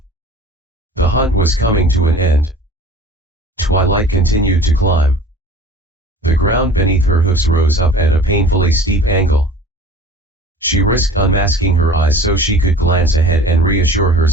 The hunt was coming to an end. Twilight continued to climb. The ground beneath her hoofs rose up at a painfully steep angle. She risked unmasking her eyes so she could glance ahead and reassure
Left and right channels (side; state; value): both; normal; correlation 0.44